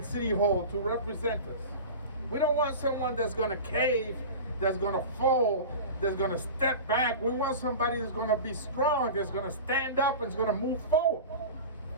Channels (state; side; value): inverted; both; correlation -0.32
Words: City Hall to represent us. We don't want someone that's going to cave, that's going to fold, that's going to step back. We want somebody that's going to be strong, that's going to stand up and is going to move forward.